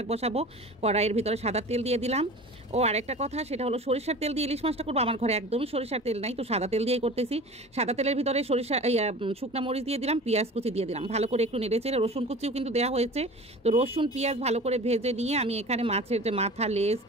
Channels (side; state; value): both; normal; correlation 0.38